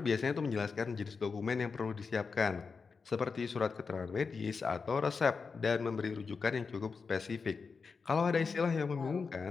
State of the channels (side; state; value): right; quieter; 5.0 dB